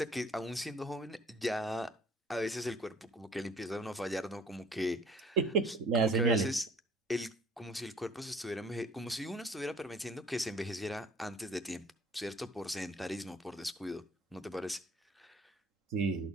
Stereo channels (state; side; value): normal; both; correlation 0.53